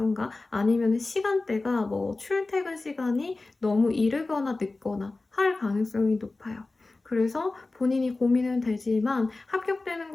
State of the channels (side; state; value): right; quieter; 3.3 dB